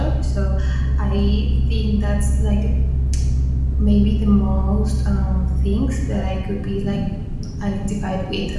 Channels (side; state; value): both; identical; correlation 1.00